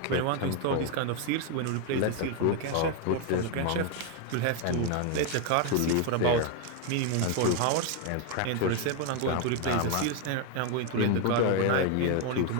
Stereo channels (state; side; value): different; both; correlation 0.01